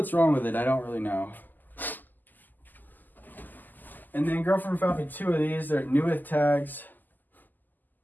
wrong with it. I don't really know. And then girlfriend found me two of these. They're new with tags.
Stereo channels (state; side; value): late; right; 0.086 ms